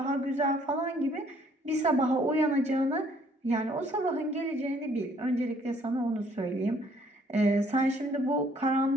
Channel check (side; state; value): both; normal; correlation 0.63